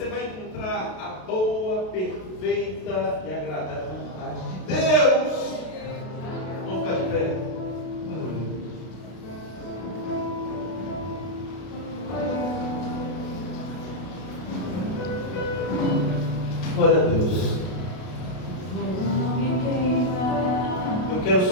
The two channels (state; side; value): late; right; 32 ms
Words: vai encontrar a boa, perfeita e agradável vontade de Deus. Vamos ficar de pé. Glória a Deus. Eu quero